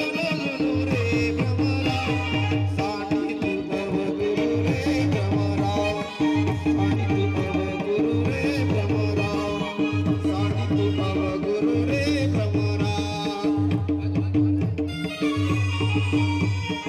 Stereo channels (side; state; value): both; identical; correlation 1.00